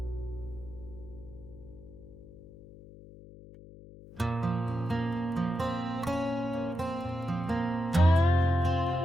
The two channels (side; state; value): left; noise; hum, 18 dB below the sound